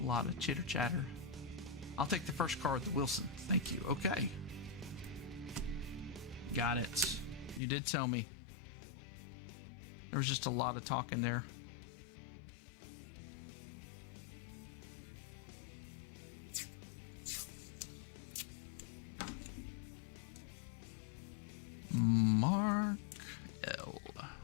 lot of chitter chatter. I'll take the first card, the Wilson. Thank you. Okay. Got it. You did tell me. There was just a lot of talking there. Mark L.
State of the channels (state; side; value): drops out; right; at 7.6 s